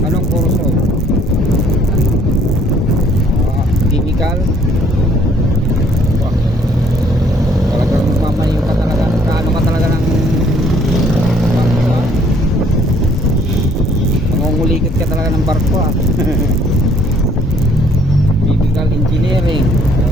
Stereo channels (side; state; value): both; normal; correlation 0.62